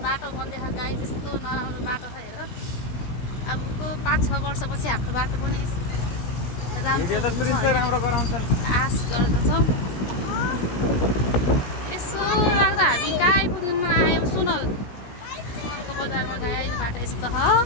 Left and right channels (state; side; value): late; right; 17 ms